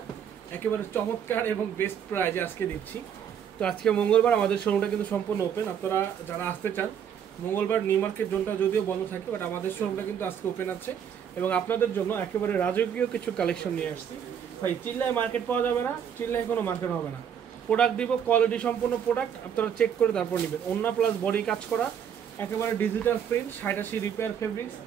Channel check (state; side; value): quieter; left; 8.4 dB